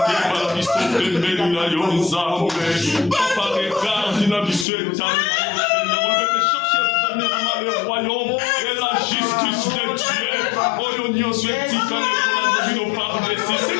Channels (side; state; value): right; drops out; at 4.7 s